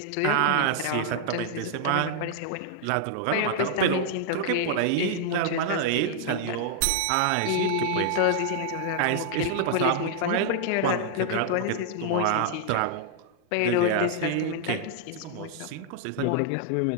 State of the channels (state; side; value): different; both; correlation 0.00